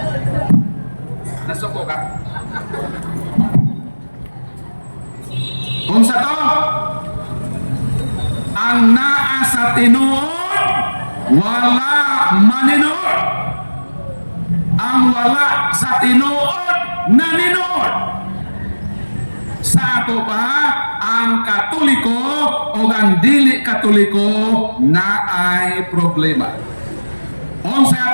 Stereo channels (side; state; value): both; inverted; correlation -1.00